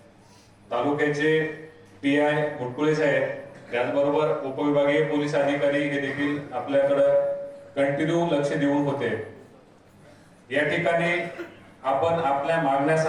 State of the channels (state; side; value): identical; both; correlation 1.00